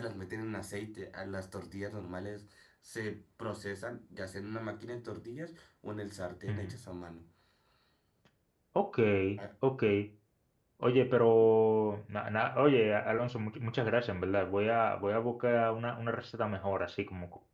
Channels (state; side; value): identical; both; correlation 1.00